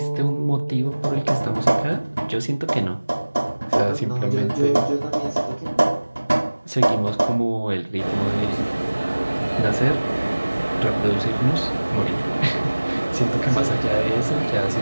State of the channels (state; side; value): inverted; both; correlation -1.00